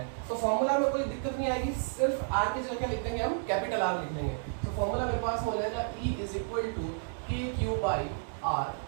तो फॉर्मूला में कोई दिक्कत नहीं आएगी, सिर्फ r की जगह क्या लिख देंगे हम, कैपिटल R लिख देंगे। तो फॉर्मूला मेरे पास हो जाएगा E =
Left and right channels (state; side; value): silent; left; digital silence